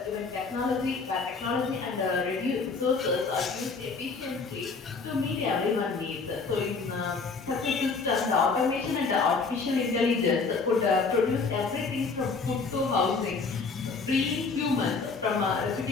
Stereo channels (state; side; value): quieter; right; 4.5 dB